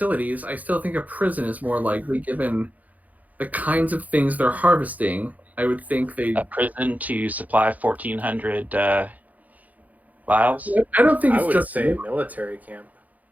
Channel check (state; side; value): late; left; 0.078 ms